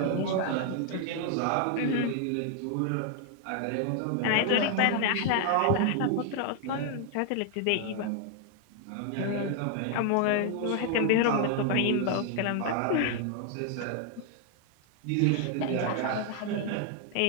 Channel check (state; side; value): different; both; correlation 0.00